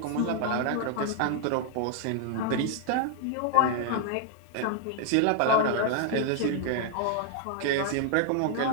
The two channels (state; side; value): different; both; correlation 0.00